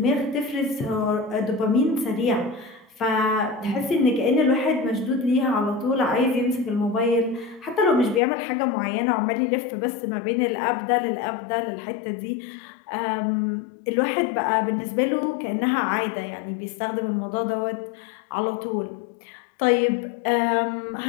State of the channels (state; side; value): drops out; right; at 8.2 s